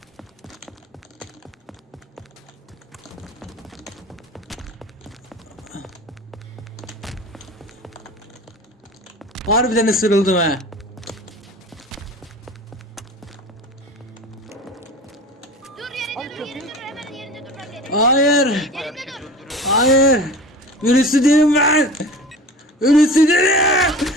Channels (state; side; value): normal; both; correlation 0.37